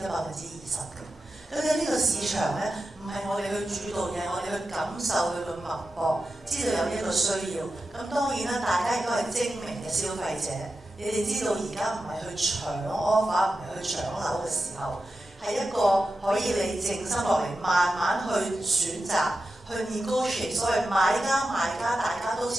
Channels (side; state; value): both; normal; correlation 0.91